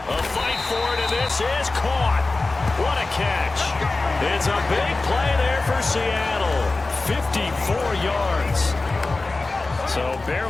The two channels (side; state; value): right; quieter; 3.4 dB